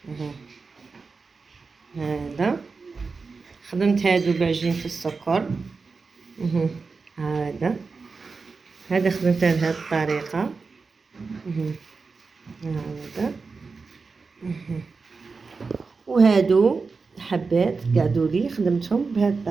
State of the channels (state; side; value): quieter; left; 4.5 dB